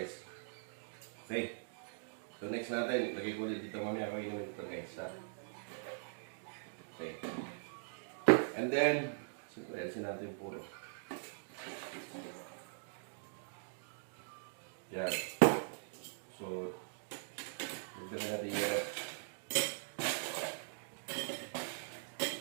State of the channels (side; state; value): left; silent; digital silence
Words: Okay. So, next natin. Lagay ko ulit dito mamaya kung inumin ito guys. Ha? Okay. And then, siyempre, alisin natin puro. Yan. So, lagyan natin yan.